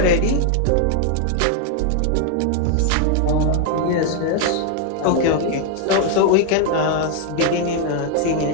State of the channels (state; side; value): different; both; correlation 0.00